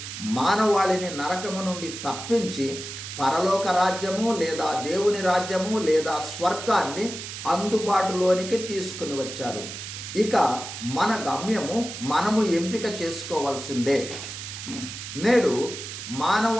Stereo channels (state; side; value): noise; right; hiss, 9 dB below the sound